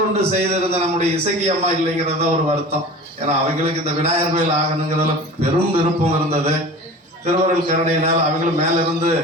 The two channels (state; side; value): normal; both; correlation 0.37